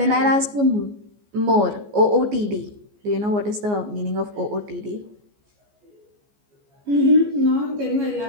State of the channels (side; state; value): left; late; 14 ms